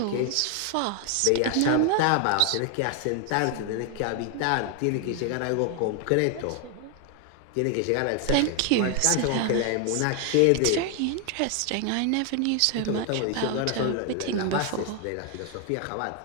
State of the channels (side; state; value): both; different; correlation 0.00